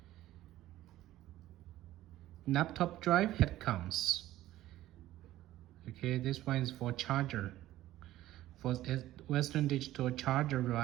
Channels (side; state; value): left; quieter; 14.8 dB